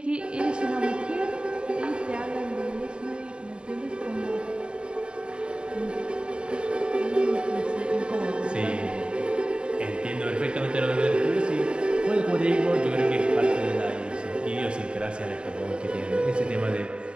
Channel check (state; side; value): late; left; 0.053 ms